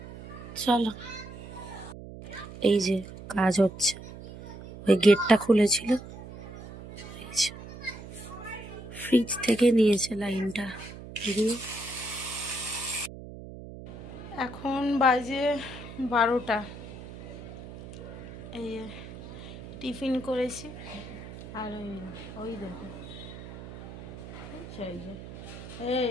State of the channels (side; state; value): right; noise; hum, 13 dB below the sound